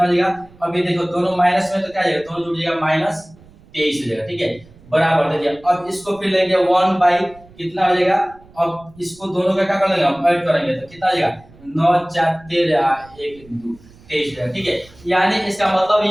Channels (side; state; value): right; noise; rumble, 25 dB below the sound